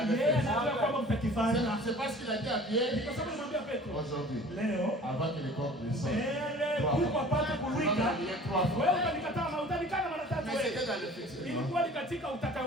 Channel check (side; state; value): both; normal; correlation 0.46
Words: avez yeye fait. anajua kwamba mtakifanya. C'est parce qu'il a dit à Pierre, Kwa sababu nimwambia Petro aujourd'hui, leo avant que les corps ne sortent, mbele kuko apate kuwika wewe utanikataa na utanikana mara tatu mais wewe. c'était dans le futur. Ilikuwa ni katika